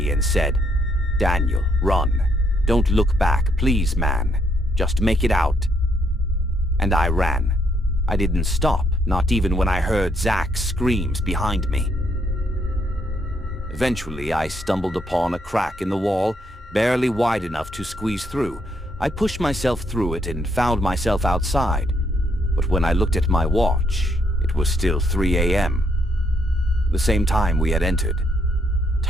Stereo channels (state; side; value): normal; both; correlation 0.73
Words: and said, "Daniel, run. Don't look back, please, man. Just make it out." And I ran. I didn't stop, not even when I heard Zach's screams behind me. Eventually, I stumbled upon a crack in the wall, barely wide enough to squeeze through. I pushed myself through it and found myself outside. But when I looked at my watch, it was still 3 a.m. The same time we had entered.